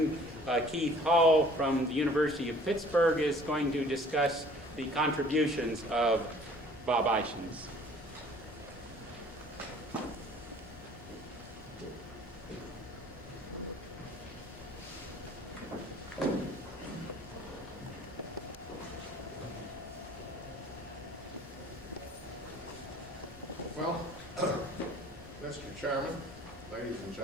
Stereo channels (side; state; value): both; normal; correlation 0.52